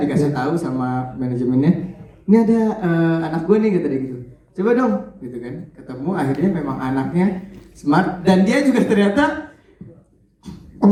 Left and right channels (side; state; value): both; identical; correlation 1.00